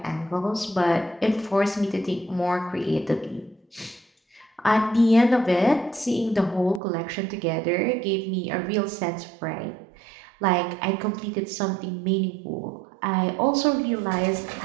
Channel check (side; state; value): left; drops out; at 6.8 s